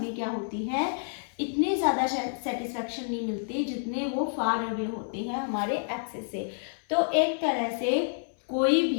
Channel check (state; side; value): silent; right; 59 dB below the other